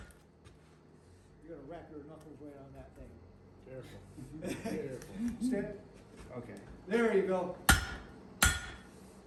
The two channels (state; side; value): identical; both; correlation 1.00